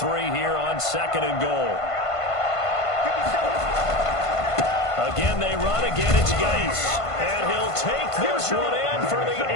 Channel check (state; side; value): late; right; 1.5 ms